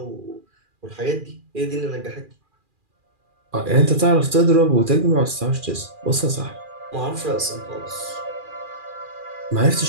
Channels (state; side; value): late; left; 2.4 ms